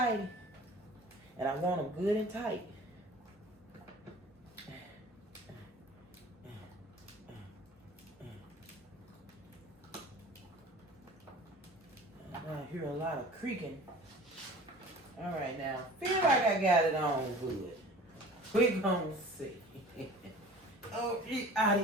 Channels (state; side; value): normal; both; correlation 0.43